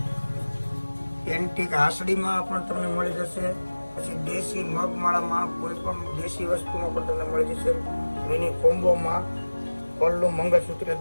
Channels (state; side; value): inverted; both; correlation -1.00